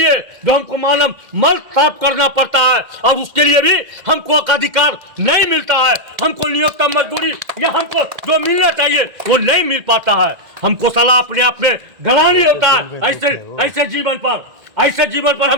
जो हमको मानव मल साफ करना पड़ता है और उसके लिए भी हमको अधिकार नहीं मिलता है, हमको न्यूनतम मजदूरी या हमको जो मिलना चाहिए वो नहीं मिल पाता है, हमको सलाह अपने आप में गलानी होता है। ऐसे जीवन पर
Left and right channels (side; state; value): left; late; 2.1 ms